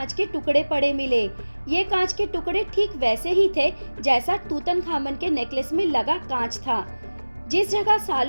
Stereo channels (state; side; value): inverted; both; correlation -1.00